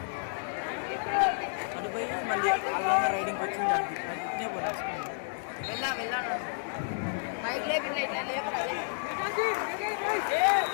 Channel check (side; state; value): right; silent; digital silence